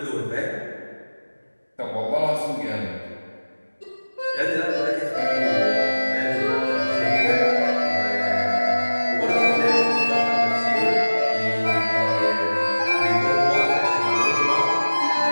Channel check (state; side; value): inverted; both; correlation -1.00